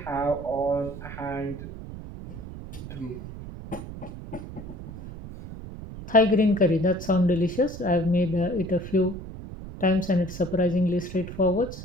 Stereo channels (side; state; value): right; noise; rumble, 11 dB below the sound